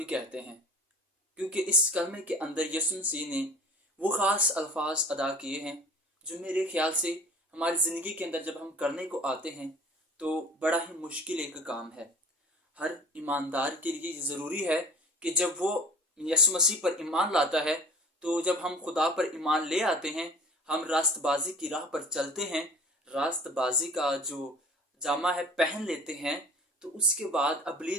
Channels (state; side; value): normal; both; correlation 0.45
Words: कहते हैं। क्योंकि इस कलमे के अंदर यीशु मसीह ने वो ख़ास अल्फाज अदा किए हैं जो मेरे ख्याल से हमारी ज़िंदगी के अंदर जब हम करने को आते हैं तो बड़ा ही मुश्किल एक काम है। हर ईमानदार के लिए ज़रूरी है कि जब वो यीशु मसीह पर ईमान लाता है, तो जब हम खुदा पर ईमान ले आते हैं, हम रास्तबाजी की राह पर चलते हैं, रास्तबाजी का जो जामा है पहन लेते हैं, तो उसके बाद